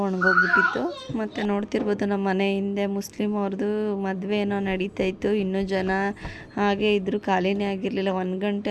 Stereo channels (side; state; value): both; identical; correlation 1.00